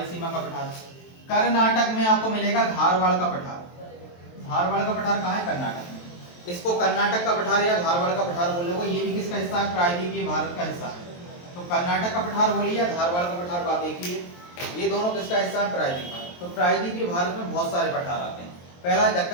का पठार। कर्नाटक में आपको मिलेगा धारवाड़ का पठार। धारवाड़ का पठार कहाँ है, कर्नाटक में। इसको कर्नाटक का पठार या धारवाड़ का पठार बोलोगे। ये भी किसका हिस्सा है, प्रायद्वीपीय भारत का हिस्सा है। तो कर्नाटक का पठार बोलिए या धारवाड़ का पठार, बात एक ही है। ये दोनों किसका हिस्सा है, प्रायद्वीप भारत। तो प्रायद्वीपीय भारत में बहुत सारे पठार आते हैं। पहला है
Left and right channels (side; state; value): right; late; 23 ms